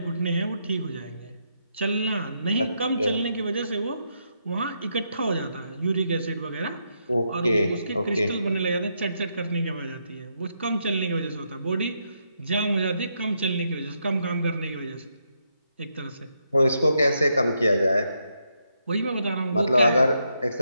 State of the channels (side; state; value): both; inverted; correlation -0.79